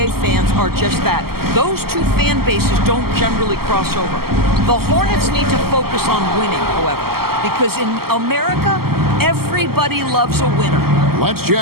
fans are just that. Those two fan bases don't generally cross over. The Hornets need to focus on winning, however, because in America, everybody loves a winner. Let's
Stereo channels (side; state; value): left; late; 0.95 ms